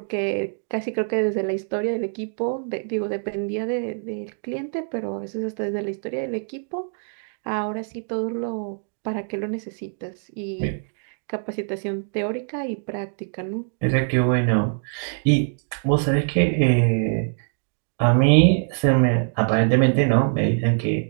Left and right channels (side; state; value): left; silent; 63 dB below the other